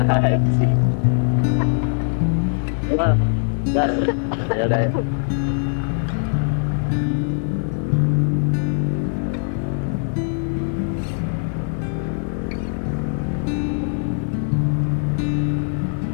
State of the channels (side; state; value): right; silent; digital silence